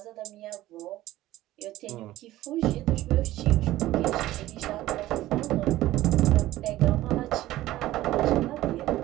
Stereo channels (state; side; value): quieter; left; 15.7 dB